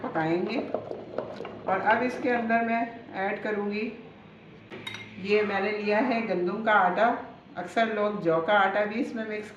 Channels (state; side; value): identical; both; correlation 1.00